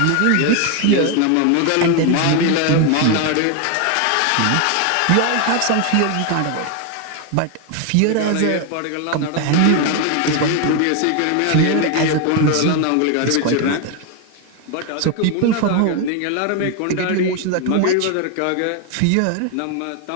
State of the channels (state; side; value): different; both; correlation 0.01